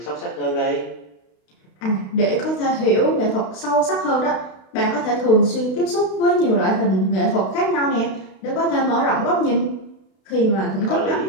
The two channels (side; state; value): right; late; 32 ms